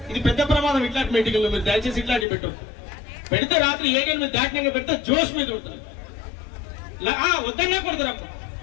ఇది పెద్ద ప్రమాదం. ఇట్లాంటి మీటింగ్లో మీరు దయచేసి ఇట్లాంటి పెట్టదు. పెడితే రాత్రి 7 మీద దాటినాక పెడితే జోష్ మీద ఉంటుంది. వద్దన్నా కొడతారు. అప్పుడు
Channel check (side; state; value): right; drops out; at 2.2 s